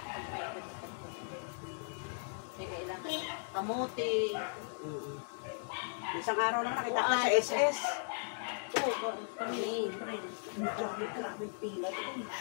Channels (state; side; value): silent; right; digital silence